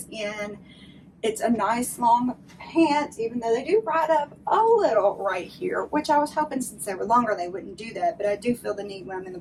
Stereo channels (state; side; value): identical; both; correlation 1.00